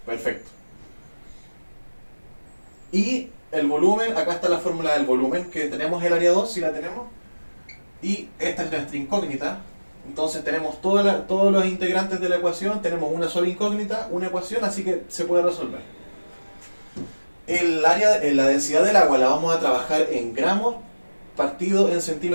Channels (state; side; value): inverted; both; correlation -1.00